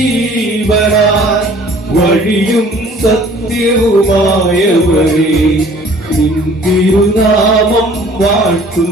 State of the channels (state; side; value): normal; both; correlation 0.53